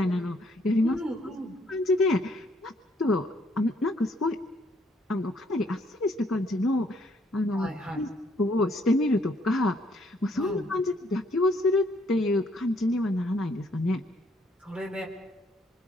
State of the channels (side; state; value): both; normal; correlation 0.68